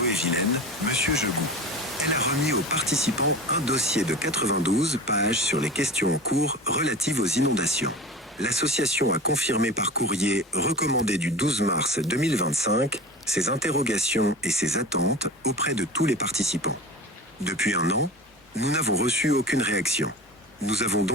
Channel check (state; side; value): normal; both; correlation 0.34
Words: M. Jegou. Elle a remis aux participants un dossier de 92 pages sur les questions en cours relatives aux inondations. L'association a confirmé par courrier recommandé du 12 mars 2025 ses interrogations et ses attentes auprès de tous les participants. Depuis un an, nous n'avons reçu aucune réaction. Nous avons